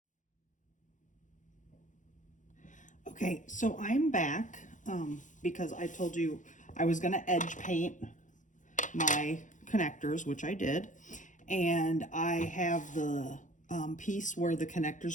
Okay, so I'm back because I told you I was gonna edge paint my connectors, which I did, and I have the piece where the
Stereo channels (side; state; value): right; late; 0.37 ms